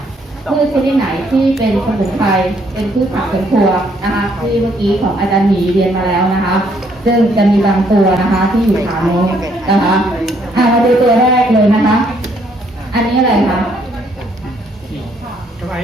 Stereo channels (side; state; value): both; normal; correlation 0.68